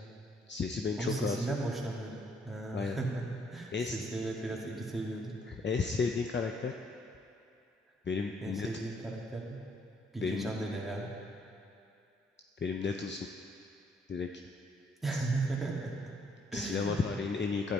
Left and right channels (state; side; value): normal; both; correlation 0.68